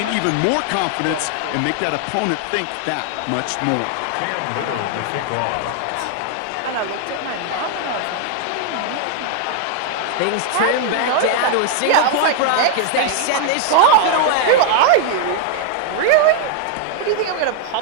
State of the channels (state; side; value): different; both; correlation 0.00